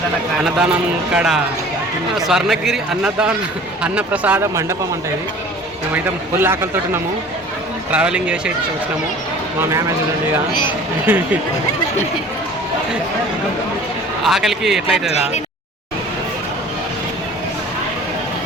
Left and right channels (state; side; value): normal; both; correlation 0.46